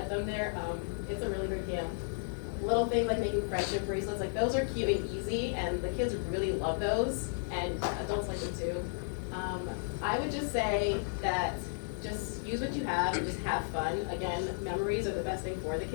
them there. It's a really great camp. Little things like making friendship bracelets, those are cute and easy, and the kids really love those, and adults like them too. I would just say that just use what you have and just have fun. Again, memories are the best thing for the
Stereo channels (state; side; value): silent; right; digital silence